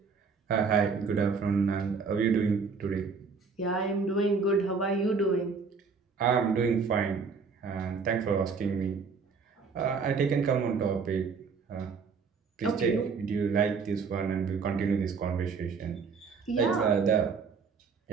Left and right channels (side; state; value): left; quieter; 5.2 dB